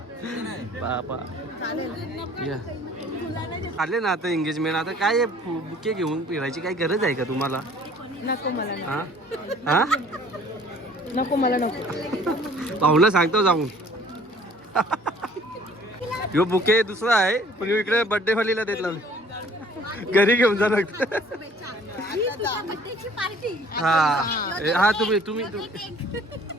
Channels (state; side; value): normal; both; correlation 0.54